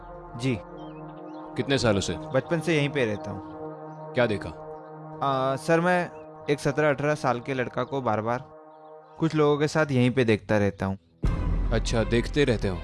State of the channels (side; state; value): both; identical; correlation 1.00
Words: जी। कितने सालों से? बचपन से यहीं पे रहता हूँ। क्या देखा? सर मैं एक 17-18 साल के लड़का को बार बार कुछ लोगों के साथ यहीं पे देखता रहता हूँ। अच्छा, देखते रहते हो?